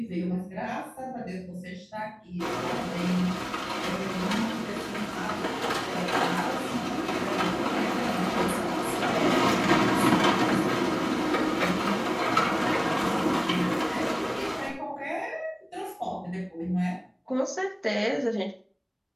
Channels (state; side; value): identical; both; correlation 1.00